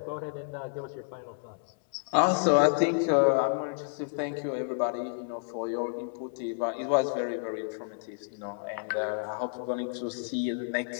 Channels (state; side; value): silent; right; 58 dB below the other